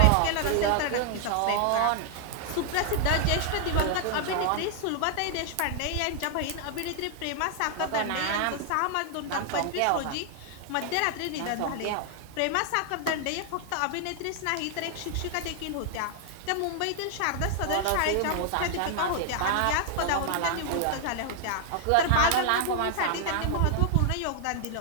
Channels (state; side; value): different; both; correlation 0.00